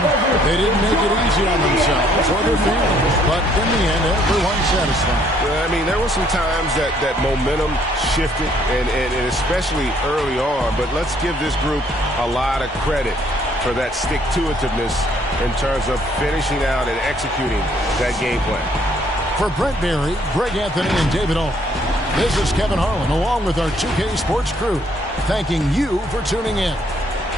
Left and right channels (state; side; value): normal; both; correlation 0.65